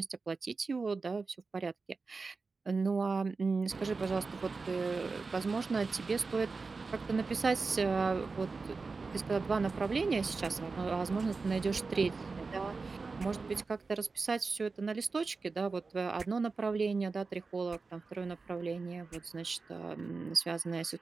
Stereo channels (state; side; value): quieter; left; 4.2 dB